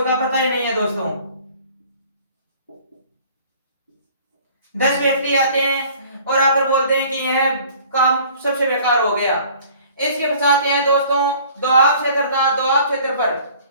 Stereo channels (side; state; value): both; inverted; correlation -0.51